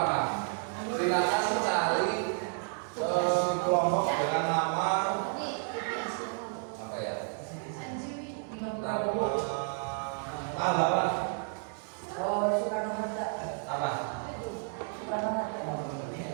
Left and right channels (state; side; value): silent; left; 57 dB below the other